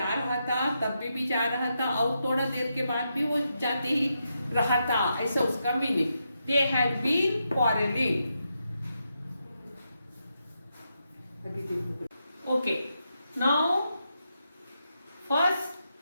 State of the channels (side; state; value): both; inverted; correlation -0.84